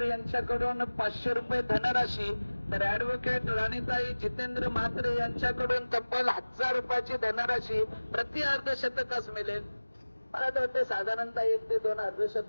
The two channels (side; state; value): both; inverted; correlation -1.00